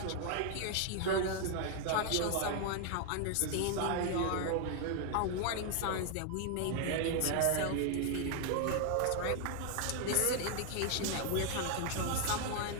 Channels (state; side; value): different; both; correlation 0.00